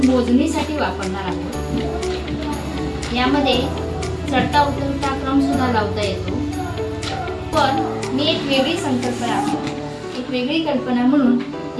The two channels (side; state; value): both; identical; correlation 1.00